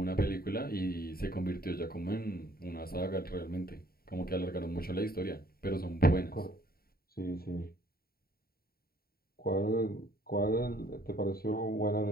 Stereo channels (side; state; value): right; late; 0.44 ms